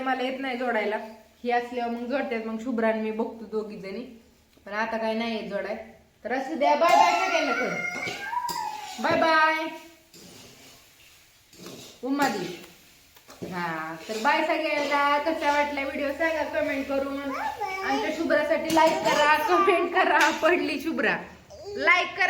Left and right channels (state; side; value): identical; both; correlation 1.00